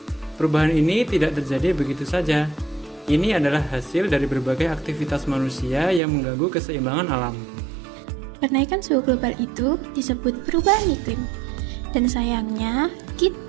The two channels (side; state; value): left; drops out; at 6.0 s